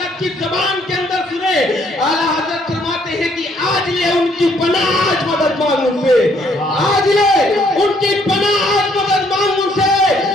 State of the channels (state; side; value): normal; both; correlation 0.67